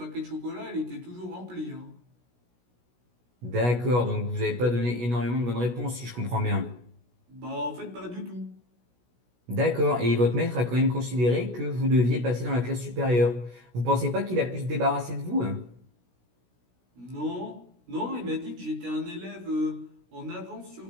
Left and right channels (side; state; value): left; late; 16 ms